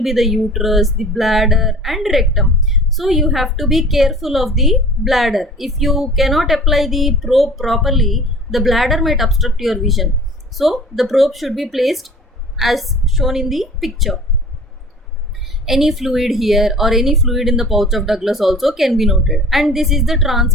be the uterus, the bladder and rectum. So you have to be careful of the bladder. If you cannot apply the probe properly, the bladder might obstruct your vision. So the probe should be placed as shown in the picture. Any fluid here or any fluid in the pouch of Douglas also can be noted. And this is the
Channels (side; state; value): both; normal; correlation 0.45